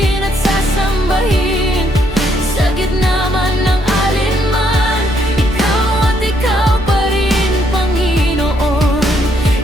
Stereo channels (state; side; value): normal; both; correlation 0.72